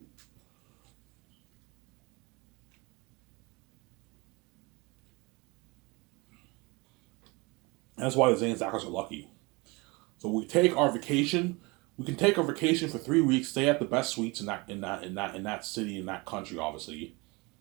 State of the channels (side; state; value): left; quieter; 26.2 dB